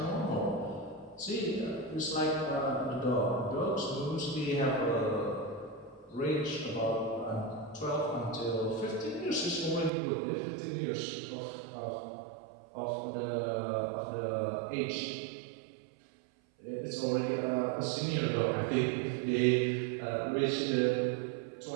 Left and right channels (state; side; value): drops out; left; at 9.9 s